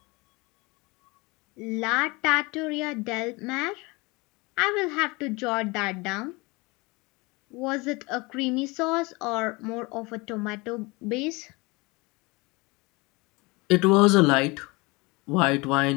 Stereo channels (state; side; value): quieter; right; 25.1 dB